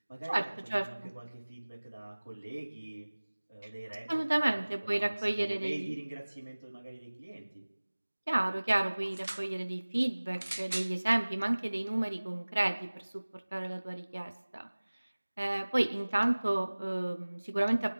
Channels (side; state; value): both; inverted; correlation -1.00